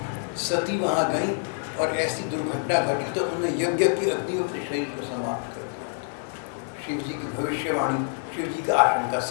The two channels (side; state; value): right; silent; 61 dB below the other